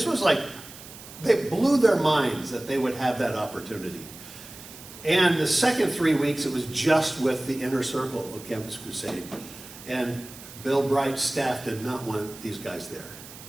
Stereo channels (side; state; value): right; noise; hiss, 16 dB below the sound